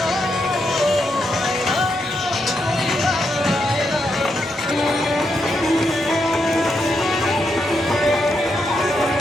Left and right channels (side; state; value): both; normal; correlation 0.82